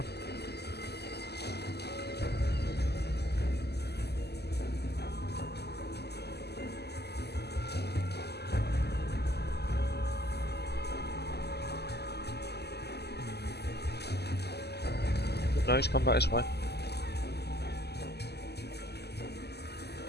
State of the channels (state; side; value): late; right; 0.48 ms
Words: No, he's come back this way.